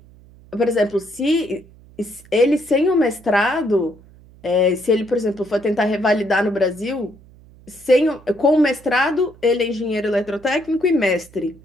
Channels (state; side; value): noise; right; hum, 25 dB below the sound